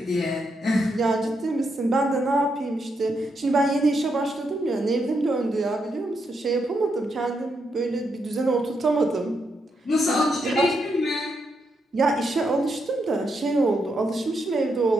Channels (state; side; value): normal; both; correlation 0.80